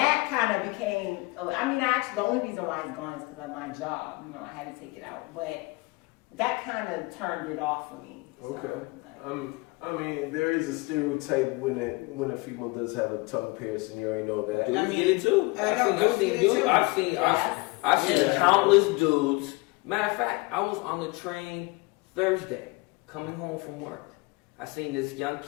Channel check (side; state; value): right; quieter; 25.4 dB